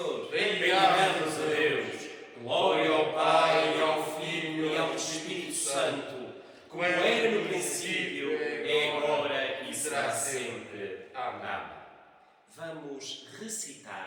Bendigamos a Deus. Glória ao Pai, e ao Filho e ao Espírito Santo, como era no princípio, é agora e será sempre. Amém. Vamos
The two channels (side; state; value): both; identical; correlation 1.00